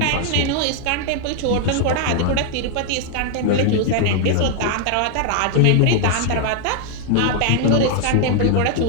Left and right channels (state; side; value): different; both; correlation 0.00